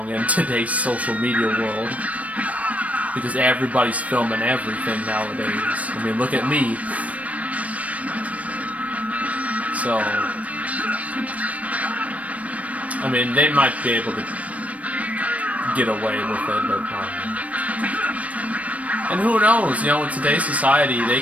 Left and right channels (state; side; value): late; left; 0.067 ms